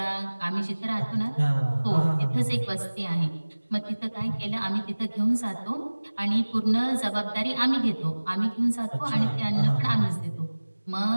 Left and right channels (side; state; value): both; inverted; correlation -1.00